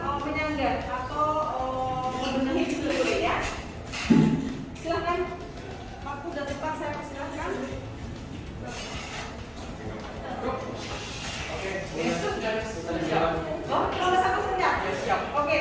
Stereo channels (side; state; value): both; identical; correlation 1.00